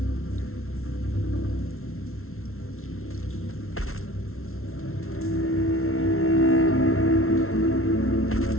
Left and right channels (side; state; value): right; late; 0.62 ms